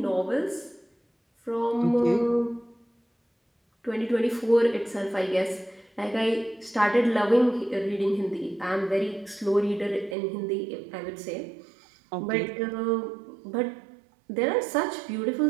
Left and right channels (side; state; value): left; drops out; at 10.2 s